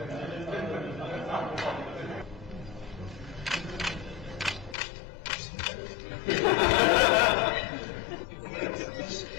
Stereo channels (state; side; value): drops out; right; at 4.8 s